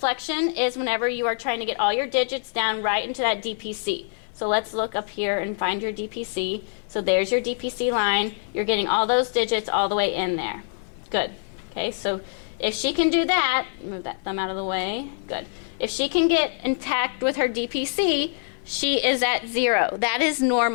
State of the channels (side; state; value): right; silent; 58 dB below the other